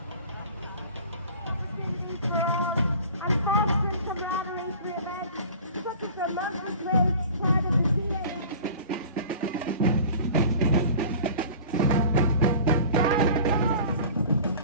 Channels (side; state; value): both; inverted; correlation -0.42